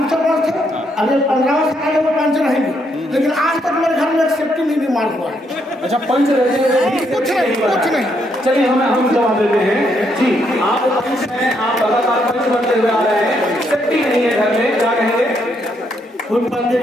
सरपंच थे, अगले 15 साल वो पंच रहेंगे, लेकिन आज तक मेरे घर में एक सेफ्टी नहीं निर्माण हुआ है। अच्छा, पंच रहते हैं, कुछ नहीं। चलिए हम जवाब देते हैं जी। आप पंच हैं, आप लगातार पंच बनते हुए आ रहे हैं, सेफ्टी नहीं है घर में, क्या कहेंगे? कुछ बंदे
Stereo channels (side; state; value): both; normal; correlation 0.75